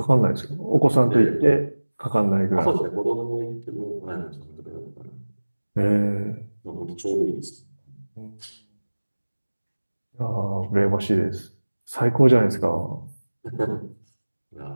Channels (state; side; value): inverted; both; correlation -1.00